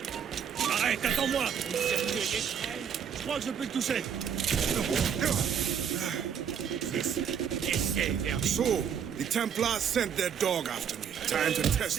Arrête, attends-moi! Je crois que je peux te toucher. So, the Templars sent their dog after me. Time to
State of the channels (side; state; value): left; quieter; 7.9 dB